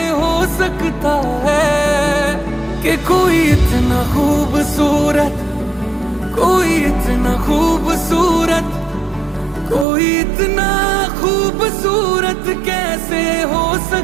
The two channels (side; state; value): left; drops out; at 9.9 s